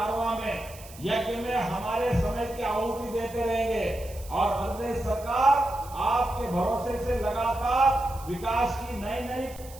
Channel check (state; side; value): noise; right; hiss, 19 dB below the sound